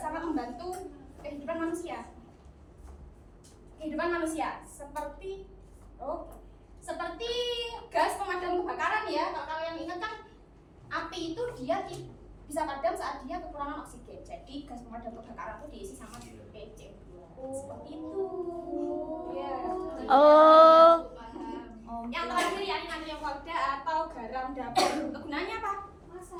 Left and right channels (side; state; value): both; identical; correlation 1.00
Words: sangat membantu kehidupan manusia. Kehidupan manusia seperti seperti gas pemadam kebakaran ya. Kalau kalian ingat kan api itu dia bisa padam saat dia kekurangan oksigen. Jadi gas pemadam kebakaran itu diisi sama CO2. Seperti itu. Ya. Oh. Yang terakhir yakni natrium klorida atau garam dapur. Kegunaannya apa?